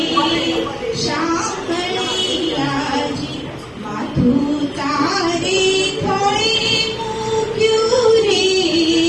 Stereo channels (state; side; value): identical; both; correlation 1.00